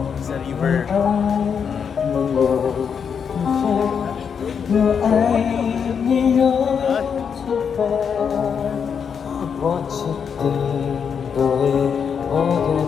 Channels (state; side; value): quieter; right; 6.9 dB